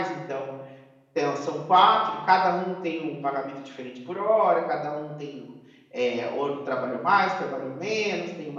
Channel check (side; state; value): both; identical; correlation 1.00